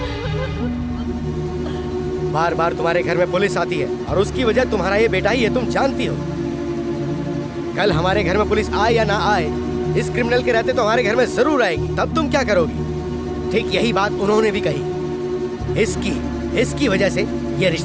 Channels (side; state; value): both; identical; correlation 1.00